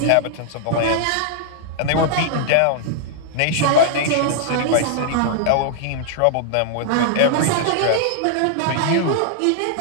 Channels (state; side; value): different; both; correlation -0.01